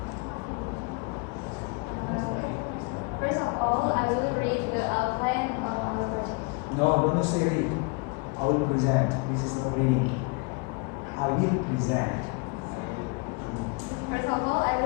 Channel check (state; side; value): quieter; right; 30.5 dB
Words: First of all, I will read the outline of our project. No, don't say read. I will present. This is no reading. I will present. First of all, I